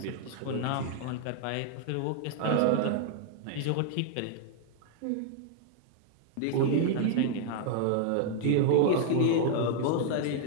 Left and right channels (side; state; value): both; different; correlation 0.00